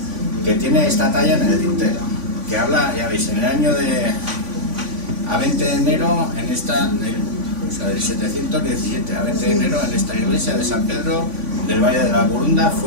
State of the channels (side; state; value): left; late; 3.5 ms